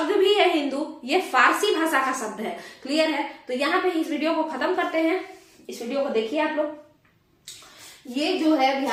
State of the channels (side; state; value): both; identical; correlation 1.00